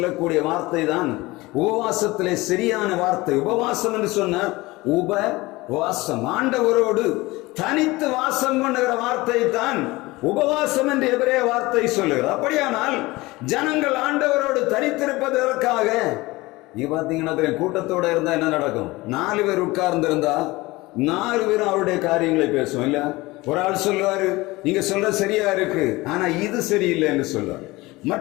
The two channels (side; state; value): right; quieter; 21.0 dB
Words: வார்த்தை தான் உபவாசத்திலே சரியான வார்த்தை. உபவாசம் என்று சொன்ன உபவாசம், ஆண்டவரோடு தனித்து வாசம் பண்ணுகிற வார்த்தை தான் உபவாசம் என்று எபிரேய வார்த்தை சொல்லுகிறது. அப்படியானால் ஜனங்கள் ஆண்டவரோடு தனித்திருப்பதற்காக நீ பாத்தீங்கன்னா கூட்டத்தோட இருந்தா என்ன நடக்கும்? 4 பேர் உட்கார்ந்து இருந்தா 4 பேரும் அவருடைய காரியங்களை பேசுவோம் இல்ல. ஒரு ஆள் சொல்லுவாரு, நீங்க சொல்ற சரியா இருக்கு, ஆனா இது சரியில்லை என்று சொல்லுவார்.